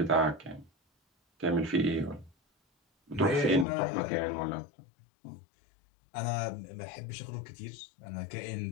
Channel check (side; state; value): right; drops out; at 3.7 s